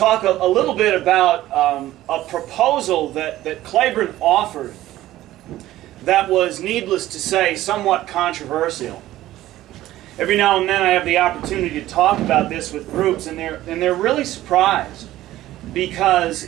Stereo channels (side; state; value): left; quieter; 14.9 dB